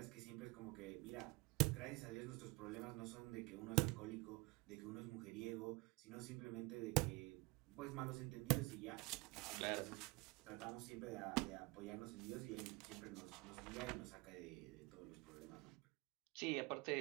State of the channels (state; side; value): quieter; left; 24.2 dB